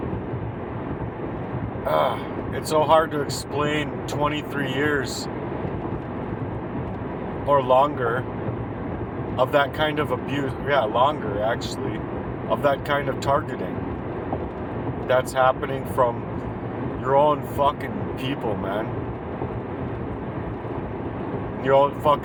it's so hard to explain 23 years or longer of that kind of abuse. Yeah, longer actually, of that kind of targeting that's happening from your own fucking people, man. You don't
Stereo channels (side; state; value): both; identical; correlation 1.00